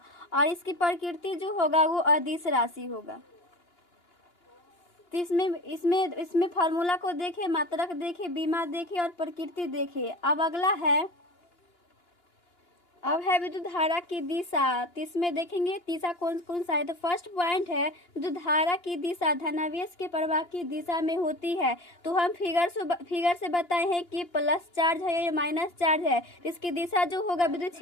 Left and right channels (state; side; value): late; right; 2.9 ms